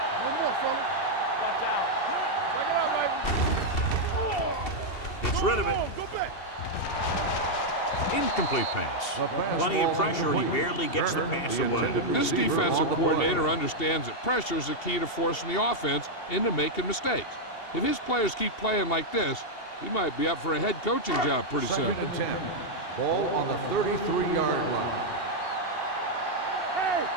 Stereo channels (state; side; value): late; right; 2.7 ms